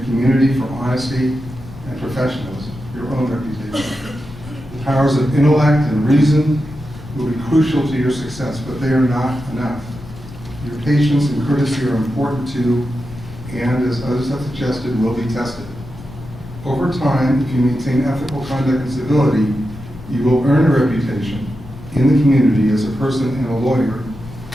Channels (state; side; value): noise; left; rumble, 16 dB below the sound